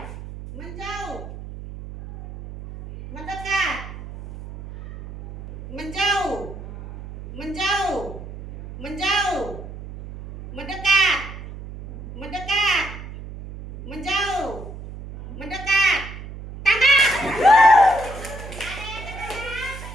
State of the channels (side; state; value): right; noise; hum, 12 dB below the sound